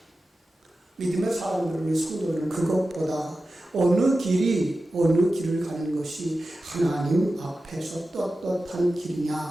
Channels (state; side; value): normal; both; correlation 0.93